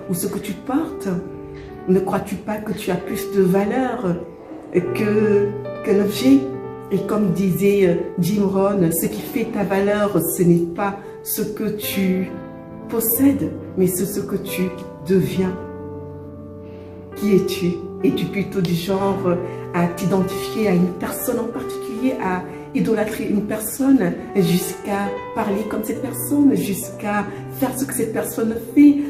ou ce que tu portes? Ne crois-tu pas que tu as plus de valeur qu'un objet? Et comme disait Jim Rohn, ce qui fait ta valeur, ce n'est pas ce que tu possèdes, mais c'est ce que tu deviens. Qui es-tu? Es-tu plutôt du genre à t'identifier à une personne en particulier, à idolâtrer une personne jusqu'à parler comme cette personne, jusqu'à faire ce que cette personne fait,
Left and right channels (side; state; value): both; identical; correlation 1.00